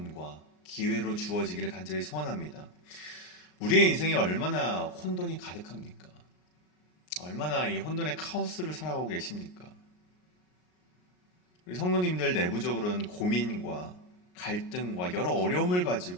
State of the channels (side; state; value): right; late; 39 ms